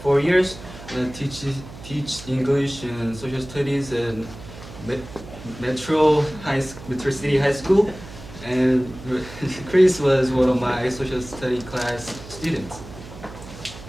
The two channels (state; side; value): noise; right; hum, 15 dB below the sound